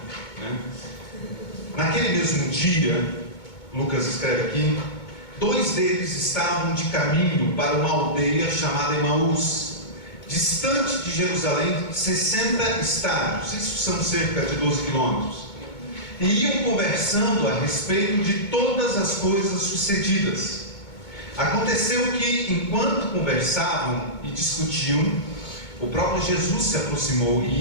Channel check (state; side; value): late; right; 2.2 ms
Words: Naquele mesmo dia, Lucas escreve aqui, 2 deles estavam de caminho para uma aldeia chamada Emaús, distante de Jerusalém 60 estádios, isso são cerca de 12 quilômetros, e iam conversando a respeito de todas as coisas sucedidas. Aconteceu que, enquanto conversavam e discutiam, o próprio Jesus se aproximou e